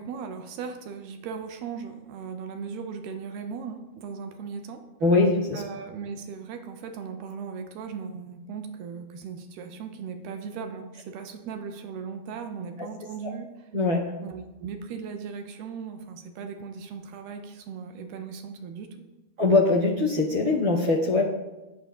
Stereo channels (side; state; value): left; late; 13 ms